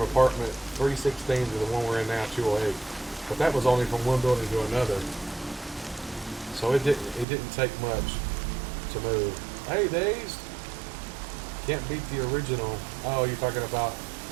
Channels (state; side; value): drops out; left; at 7.2 s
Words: apartment 316 to the one we're in now, 208. But that was only from one building to another. So it didn't take much to move. Hey, Days. Can't beat the original. Oh, you're talking about